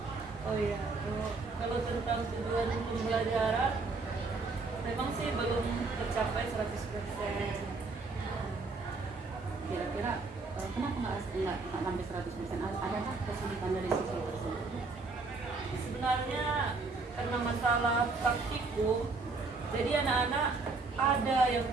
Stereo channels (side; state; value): left; quieter; 3.9 dB